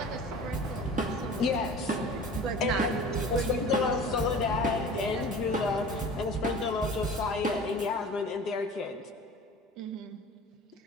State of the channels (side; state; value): both; normal; correlation 0.41